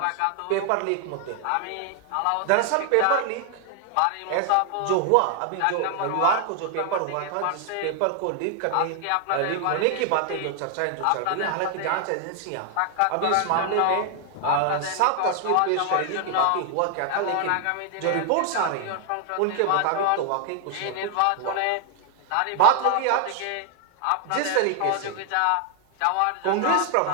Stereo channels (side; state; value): both; different; correlation 0.00